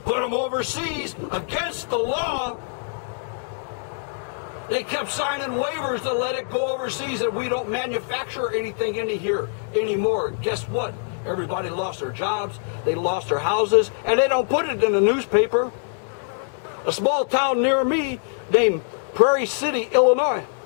put them overseas against the law. They kept signing waivers to let it go overseas, and we don't manufacture anything in here anymore. Guess what? Everybody lost their jobs, they lost their houses, and they don't put it in the newspaper. A small town near me named Prairie City, Illinois.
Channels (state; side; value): silent; right; digital silence